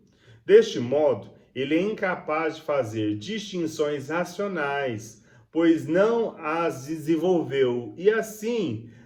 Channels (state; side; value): identical; both; correlation 1.00